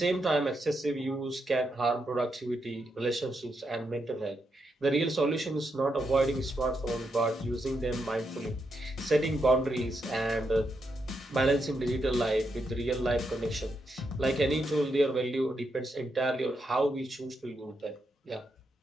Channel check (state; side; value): normal; both; correlation 0.82